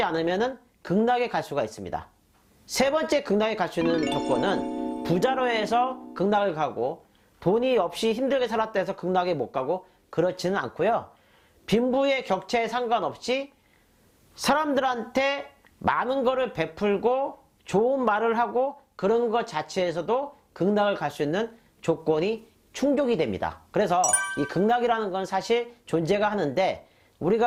않으면은 극락에 갈 수가 있습니다. 세 번째 극락에 갈 수 있는 조건은 부자로 해서 극락을 가고 돈이 없이 힘들게 살았다 해서 극락에 못 가고 그렇지는 않고요. 빈부의 격차에 상관없이 사람들한테 많은 거를 베풀고 좋은 말을 하고 그런 것 자체에서도 극락을 갈 수 있는 조건이 충족이 됩니다. 그래서 이 극락이라는 건 사실 존재가 하는데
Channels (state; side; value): identical; both; correlation 1.00